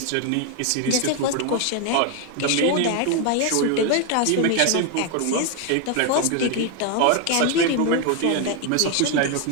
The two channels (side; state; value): both; different; correlation 0.01